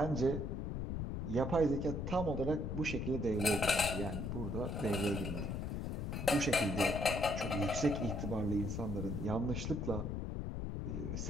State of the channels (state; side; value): noise; left; rumble, 3 dB below the sound